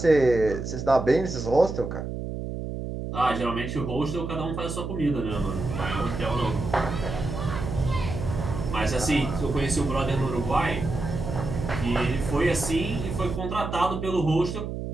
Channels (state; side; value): noise; right; hum, 5 dB below the sound